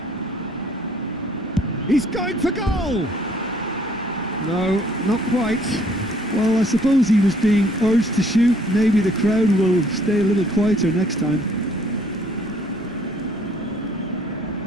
He's going for goal. No, not quite. Well, I suppose he was being urged to shoot. Maybe the crowd will stay a little quieter next time.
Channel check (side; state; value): both; normal; correlation 0.61